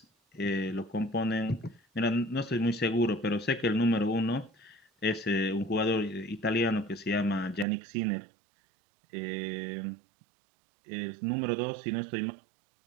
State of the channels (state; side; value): drops out; left; at 7.7 s